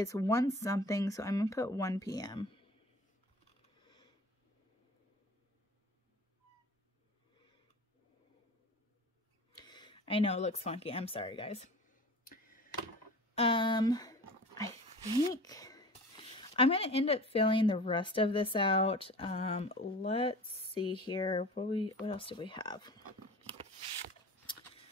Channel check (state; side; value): normal; both; correlation 0.39